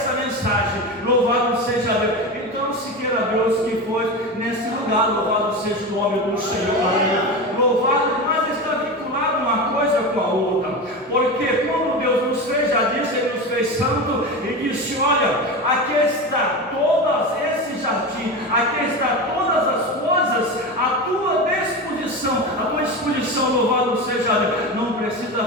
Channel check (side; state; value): both; normal; correlation 0.23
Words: mensagem. Louvado seja Deus. Então, se queira Deus que foi nesse lugar, louvado seja o nome do Senhor, aleluia. Louvado, mas está vinculado uma coisa com a outra, porque quando Deus nos fez, já disse, Ele nos fez santo e disse: olha, aqui está todo esse jardim, aqui está todas as coisas à tua disposição, louvado seja Deus. Não precisa